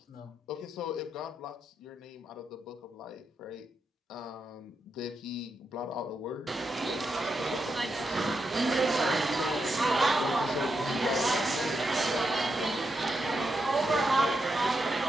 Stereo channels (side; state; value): both; normal; correlation 0.84